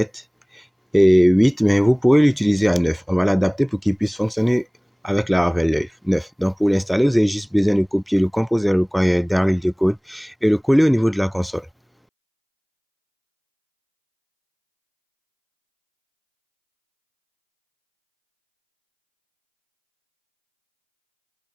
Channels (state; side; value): identical; both; correlation 1.00